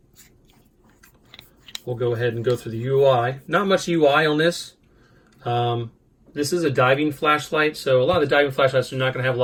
we'll go ahead and go through the UI. Not much UI on this. This is a diving flashlight, so a lot of the diving flashlights are not going to have a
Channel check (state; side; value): identical; both; correlation 1.00